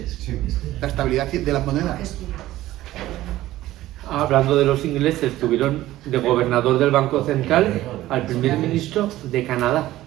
Sí. la estabilidad de las monedas. Hablando de los ingleses, tuvieron de gobernador del Banco Central al primer ministro de Canadá.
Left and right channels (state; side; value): quieter; left; 15.4 dB